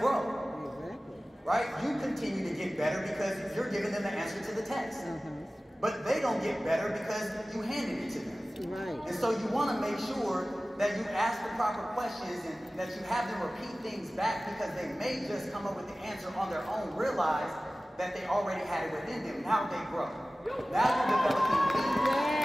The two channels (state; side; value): normal; both; correlation 0.97